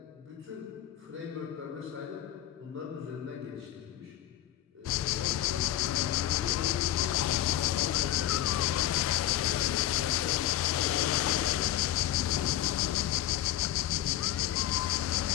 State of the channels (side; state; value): right; quieter; 12.9 dB